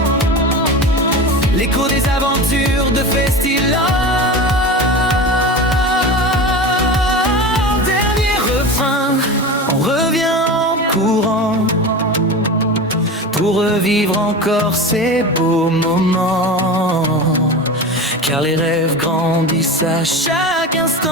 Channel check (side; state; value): both; normal; correlation 0.28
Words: l'écho des aventures de Festiland. Dernier refrain, on revient en courant pour revivre encore ces beaux moments. Car les rêves grandissent à chaque